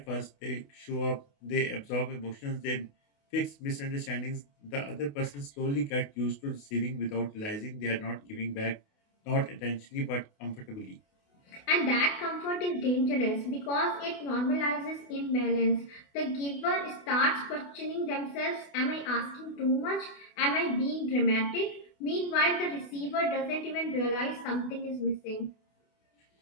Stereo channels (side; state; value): right; late; 28 ms